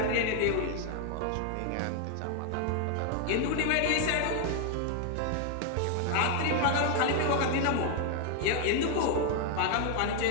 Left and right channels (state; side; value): different; both; correlation 0.00